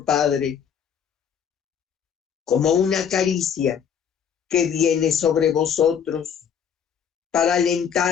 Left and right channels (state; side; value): quieter; right; 7.8 dB